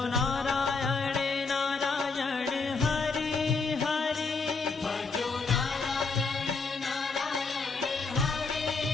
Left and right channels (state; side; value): quieter; right; 4.3 dB